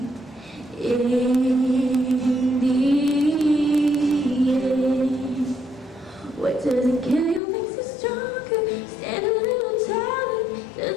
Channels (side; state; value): right; drops out; at 7.4 s